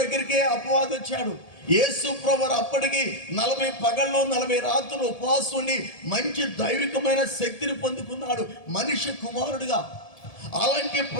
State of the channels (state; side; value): late; right; 1.7 ms